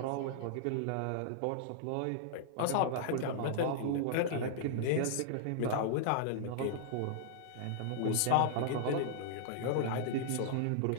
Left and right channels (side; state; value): both; different; correlation -0.01